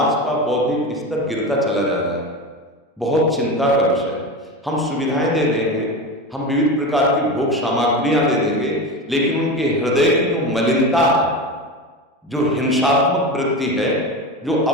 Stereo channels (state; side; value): normal; both; correlation 0.24